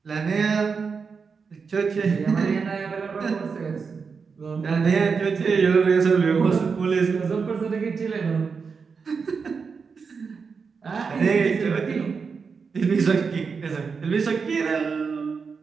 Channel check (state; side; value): quieter; left; 5.4 dB